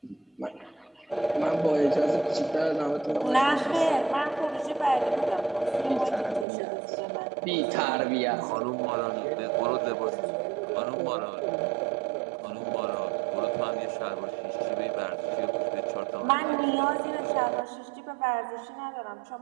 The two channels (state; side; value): drops out; left; at 6.5 s